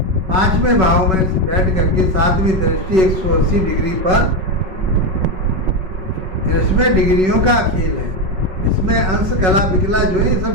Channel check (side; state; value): left; late; 5.3 ms